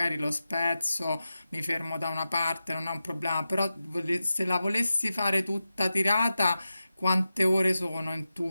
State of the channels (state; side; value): inverted; both; correlation -0.92